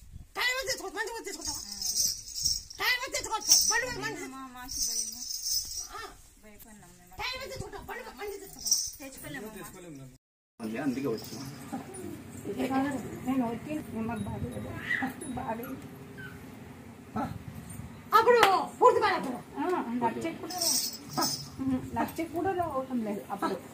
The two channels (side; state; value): both; identical; correlation 1.00